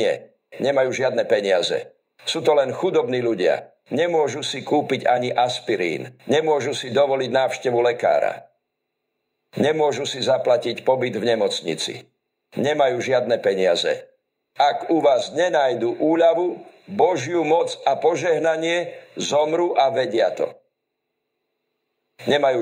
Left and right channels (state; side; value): identical; both; correlation 1.00